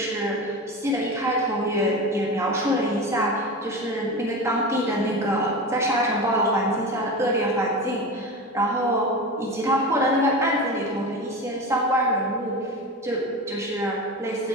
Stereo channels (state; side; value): normal; both; correlation 0.26